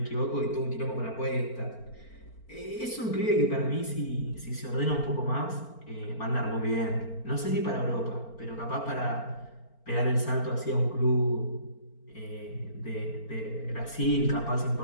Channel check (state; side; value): late; right; 4.4 ms